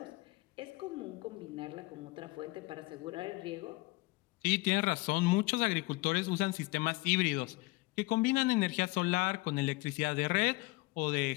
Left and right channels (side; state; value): right; quieter; 22.8 dB